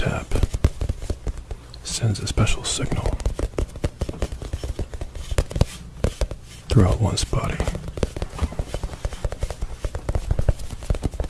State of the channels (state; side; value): identical; both; correlation 1.00